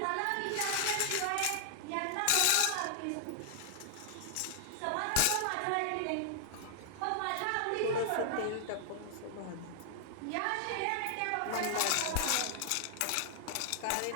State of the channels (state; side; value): different; both; correlation 0.00